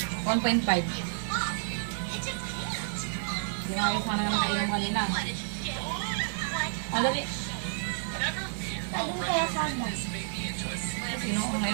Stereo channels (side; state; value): left; silent; digital silence